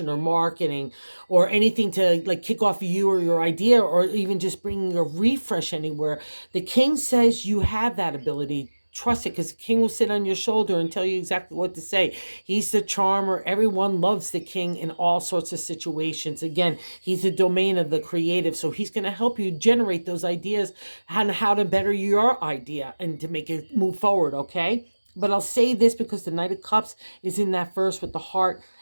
or marketing or anything to like kick off you or your idea or even just bringing a refresh anywhere. The King says you have that ability trust it, because the king will sit on your shoulder and tell you exactly what to say. He's the charmer. Everyone loves the king in all sorts of situations. Again, he's the domain of the creative, so he's going to help you generate those ideas on how to better your idea and to make it move forward, okay? But I'll say this because the Knight of Cups is in that verse with the heart,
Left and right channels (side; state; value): both; inverted; correlation -1.00